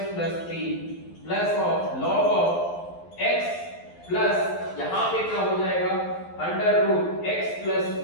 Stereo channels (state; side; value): late; right; 12 ms